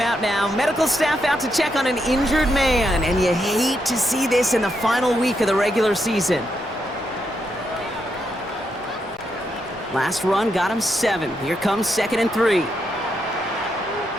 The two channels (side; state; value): both; normal; correlation 0.81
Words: now. Medical staff out to check on an injured man, and you hate to see this in the final week of the regular season. Last run got him 7. Here comes 2nd and 3.